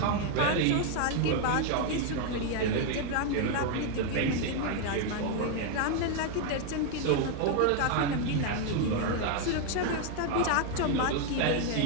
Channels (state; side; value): different; both; correlation 0.01